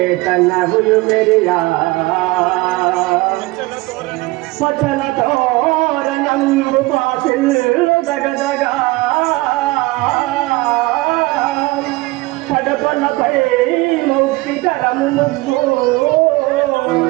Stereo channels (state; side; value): quieter; left; 21.8 dB